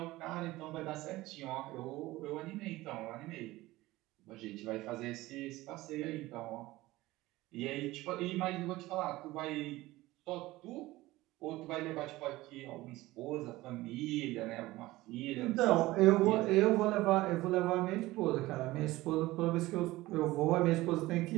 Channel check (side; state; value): left; quieter; 18.4 dB